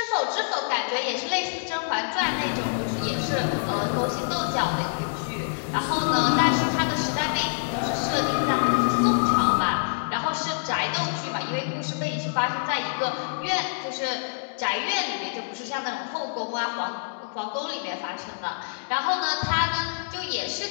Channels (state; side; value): silent; right; digital silence